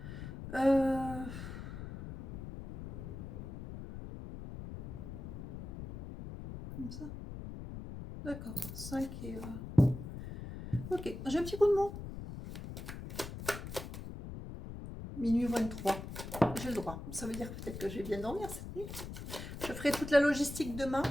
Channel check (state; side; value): noise; left; rumble, 9 dB below the sound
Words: Comme ça. D'accord. 5 et... Ok, j'ai un petit coup de mot. Minuit 23. J'ai le droit. Ça veut dire peut-être que je vais bien dormir cette nuit. Je ferai toute la logistique demain.